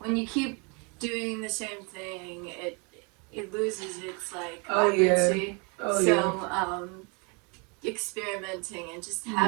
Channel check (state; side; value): quieter; left; 32.7 dB